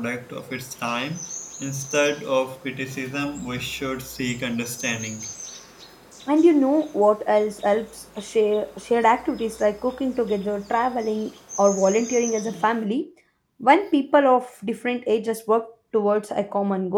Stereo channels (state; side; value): identical; both; correlation 1.00